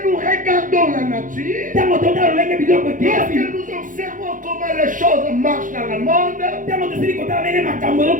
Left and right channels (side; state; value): left; late; 0.38 ms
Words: nous regardons la nature, lorsque nous observons comment les choses marchent dans le monde,